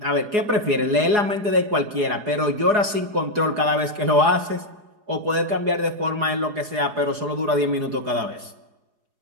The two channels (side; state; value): left; late; 4.8 ms